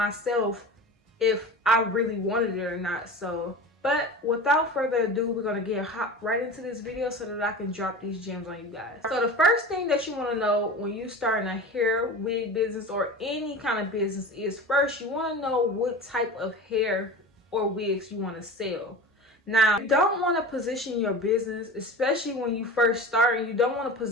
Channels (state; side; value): normal; both; correlation 0.33